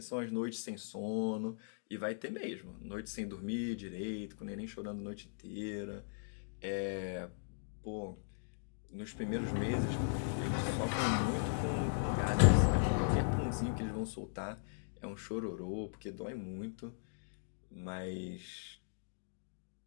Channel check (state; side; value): silent; right; digital silence